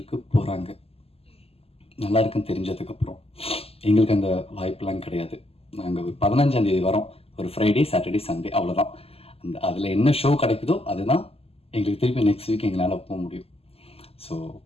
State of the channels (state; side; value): late; right; 0.29 ms